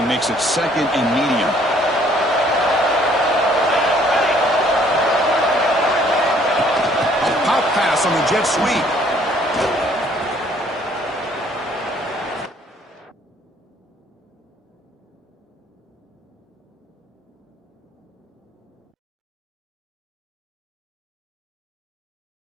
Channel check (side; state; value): both; normal; correlation 0.61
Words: makes it 2nd and medium. A pop pass on the jet sweep.